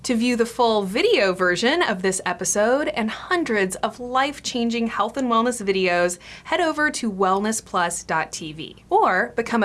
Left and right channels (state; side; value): identical; both; correlation 1.00